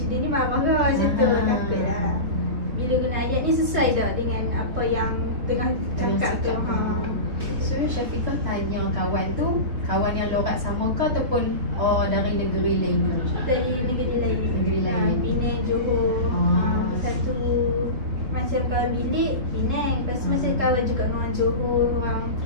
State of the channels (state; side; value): late; left; 3.9 ms